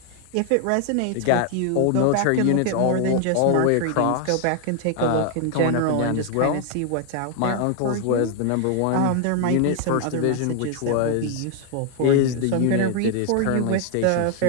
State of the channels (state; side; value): different; both; correlation 0.00